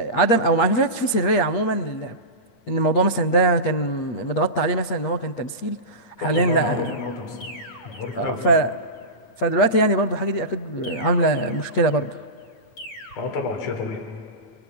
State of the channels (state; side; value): late; right; 8.5 ms